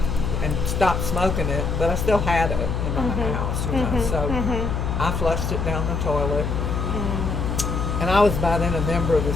and stopped smoking it, but I still had it in my house, So I flushed it down the toilet. And I was by then a member of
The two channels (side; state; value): left; noise; hum, 1 dB below the sound